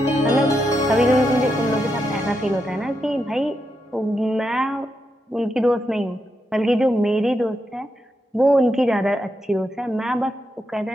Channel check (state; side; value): normal; both; correlation 0.84